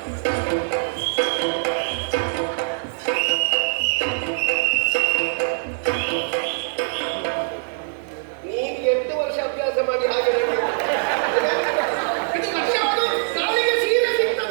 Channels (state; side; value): silent; left; digital silence